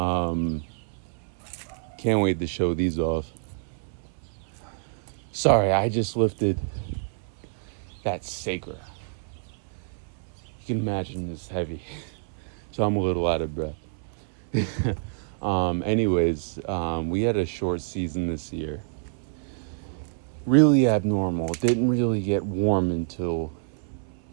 can't wait to show these off. Sorry, I just lifted that saker. You can imagine it's heavy, so I'm a little out of breath. We had a short season this year. Really abnormal. It didn't really get warm until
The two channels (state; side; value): silent; left; 60 dB below the other